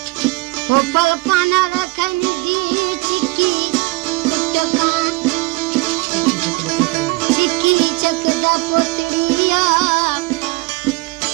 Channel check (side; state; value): left; quieter; 23.4 dB